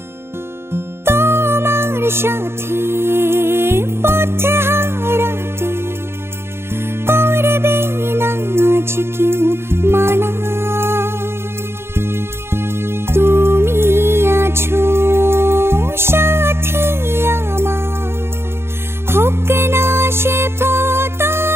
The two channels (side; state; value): left; late; 0.12 ms